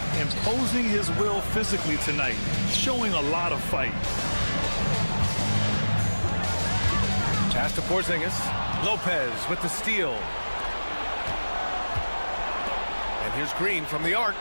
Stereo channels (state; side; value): inverted; both; correlation -1.00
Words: Imposing his will physically tonight, showing a lot of fight. Pass to Porzingis. Lopez with the steal. And here's Green from the arc.